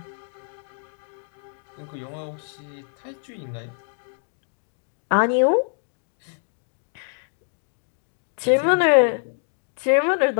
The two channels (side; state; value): right; silent; digital silence